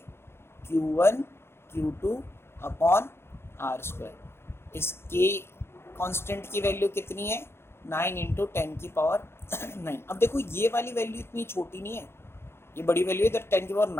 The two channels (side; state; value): right; late; 0.12 ms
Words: Q1 Q2 upon R²। इस K कांस्टेंट की वैल्यू कितनी है, 9 इंटू 10⁹। अब देखो ये वाली वैल्यू इतनी छोटी नहीं है, ये बड़ी वैल्यू इधर